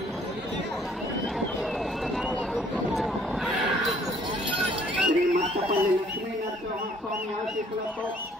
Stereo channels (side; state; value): both; normal; correlation 0.60